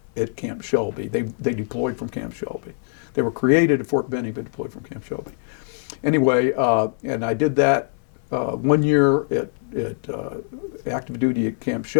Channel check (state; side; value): silent; right; 63 dB below the other